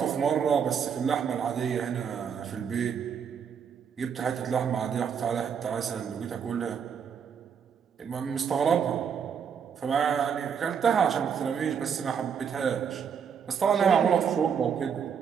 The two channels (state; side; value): quieter; left; 7.2 dB